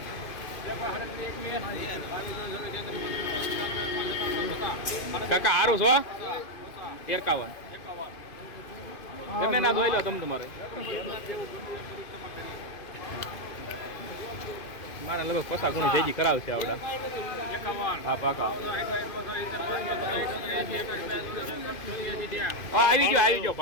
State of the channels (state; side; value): late; right; 2.5 ms